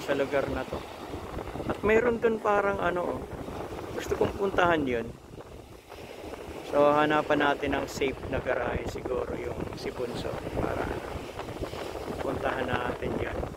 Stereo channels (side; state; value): both; identical; correlation 1.00